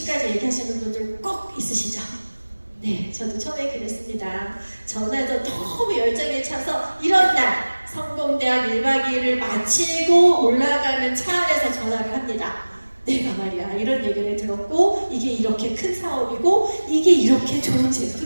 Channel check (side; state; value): both; inverted; correlation -1.00